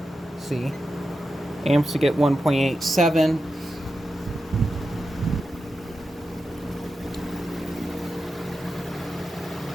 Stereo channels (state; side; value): normal; both; correlation 0.90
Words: See, amps to get 1.87.